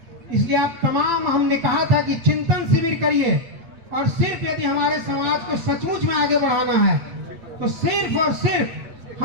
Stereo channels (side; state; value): left; late; 8.4 ms